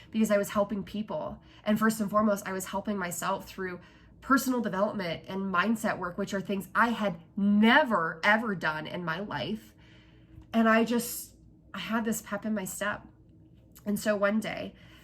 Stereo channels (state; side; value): identical; both; correlation 1.00